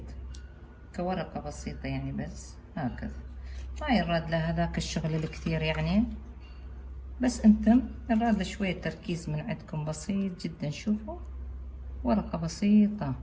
كورقة بسيطة، يعني بس هكذا، ما يراد له هذاك الشغل الكثير يعني، بس انتم يراد له شوية تركيز من عندكم بسيط جدا. شوفوا ورقة بسيطة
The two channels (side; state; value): both; identical; correlation 1.00